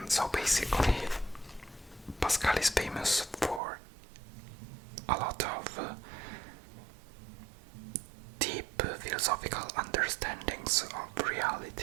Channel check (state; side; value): drops out; left; at 3.6 s